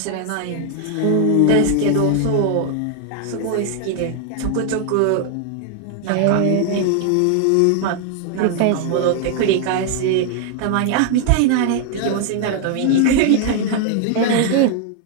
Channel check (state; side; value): different; both; correlation 0.00